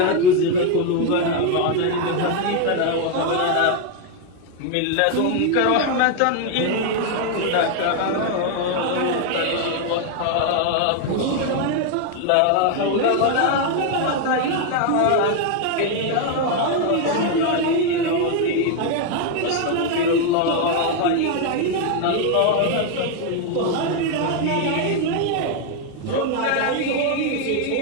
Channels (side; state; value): both; different; correlation 0.01